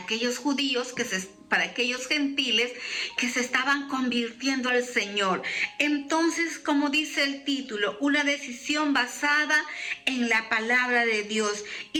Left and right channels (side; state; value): both; identical; correlation 1.00